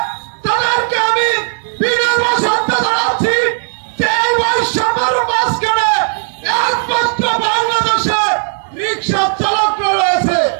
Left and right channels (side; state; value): left; silent; digital silence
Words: তাদেরকে আমি বিনম্র শ্রদ্ধা জানাচ্ছি যে এই বৈষম্যের মাঝখানে একমাত্র বাংলাদেশে রিক্সা চালকরা রয়েছে।